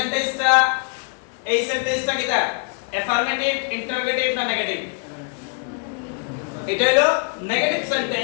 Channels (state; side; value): quieter; right; 39.4 dB